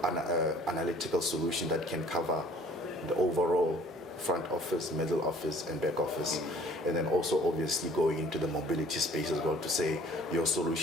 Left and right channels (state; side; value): normal; both; correlation 0.54